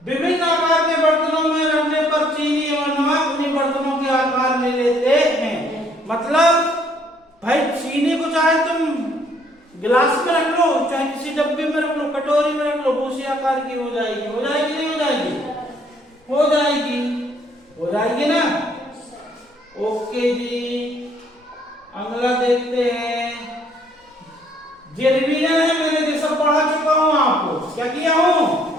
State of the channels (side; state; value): both; normal; correlation 0.64